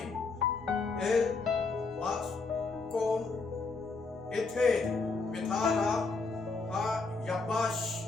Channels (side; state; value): right; quieter; 4.1 dB